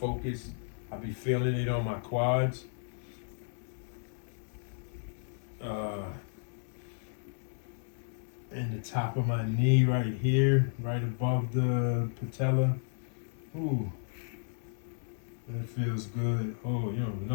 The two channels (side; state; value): right; silent; digital silence